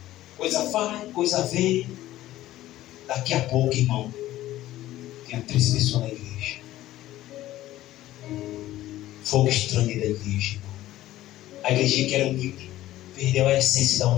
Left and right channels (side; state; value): right; quieter; 14.9 dB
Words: Coisa vai, coisa vem. Daqui a pouco, irmão, tinha 3 pessoas na igreja. Fogo estranho da igreja, irmão. A igreja que era humilde perdeu a essência da